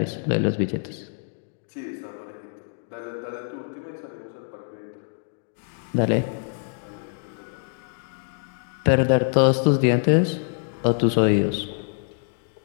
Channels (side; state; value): right; silent; digital silence